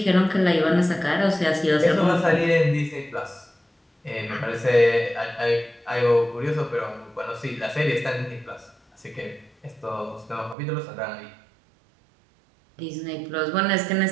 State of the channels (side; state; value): left; drops out; at 10.6 s